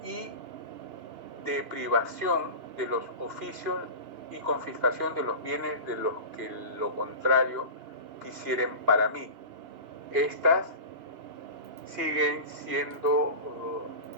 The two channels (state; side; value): late; left; 2.9 ms